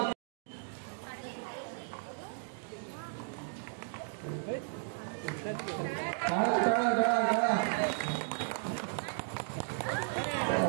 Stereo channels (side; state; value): left; silent; digital silence